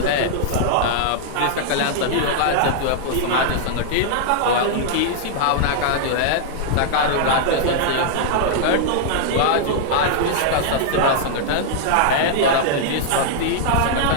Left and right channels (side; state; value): both; different; correlation -0.01